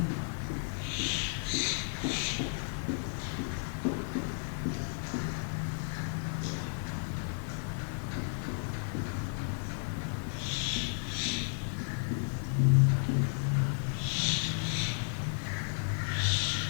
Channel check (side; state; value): right; silent; 56 dB below the other